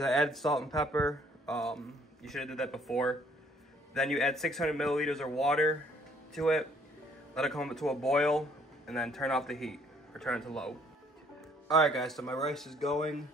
I added salt and pepper. You should have did that before. Then you add 600 milliliters of water to it. Let it come to a boil, and then turn off the heat, or turn it to low. Alright guys, so my rice is going.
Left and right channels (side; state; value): both; normal; correlation 0.62